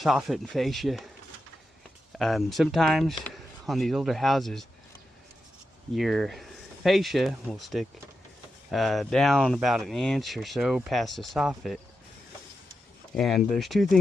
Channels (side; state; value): both; normal; correlation 0.88